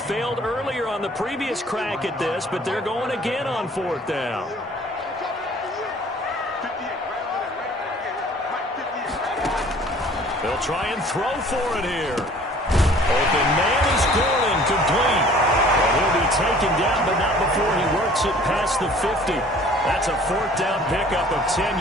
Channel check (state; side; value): normal; both; correlation 0.51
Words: earlier on the previous crack at this, but they're going again on fourth down. They'll try and throw for it here. Open man is Gordon, complete. Well, he'll be taken down, but not before he works it past the 50. That's a fourth down pickup of